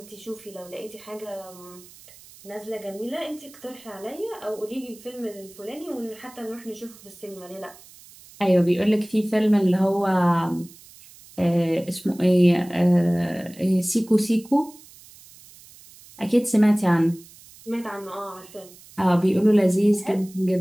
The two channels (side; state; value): right; noise; hiss, 22 dB below the sound